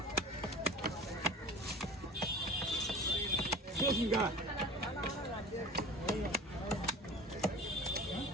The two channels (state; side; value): normal; both; correlation 0.38